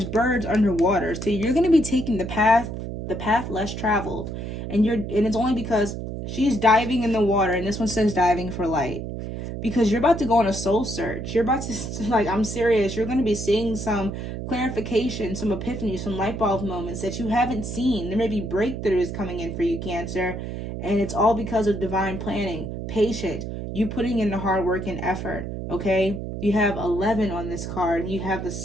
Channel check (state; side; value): noise; right; hum, 6 dB below the sound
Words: birds underwater, so you're going to be taking the path less traveled, and it's only because she's diving in the water, and this one says diving for light, because you're about to go on a soul search. You're about to, like, I'm serious, you're going to be seeing some clarification, some epiphany, some light bulb moments that you haven't seen. There may be breakthroughs coming in for you, Cancer, and it's all because of divine planning, patience, you putting in the hard work and effort, okay? You have 11 on this card. You have the